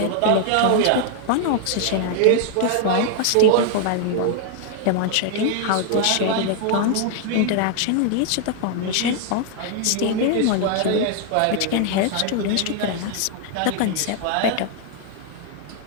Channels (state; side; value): different; both; correlation 0.00